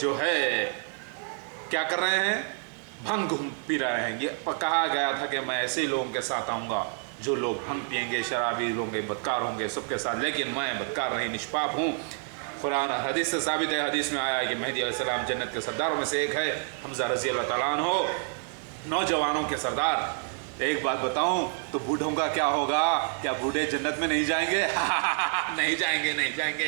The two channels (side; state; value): left; silent; 55 dB below the other